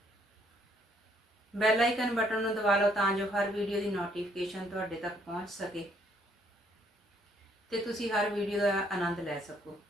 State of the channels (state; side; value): normal; both; correlation 0.67